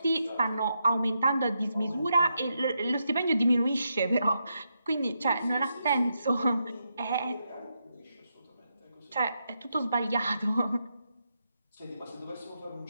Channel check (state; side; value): inverted; both; correlation -0.83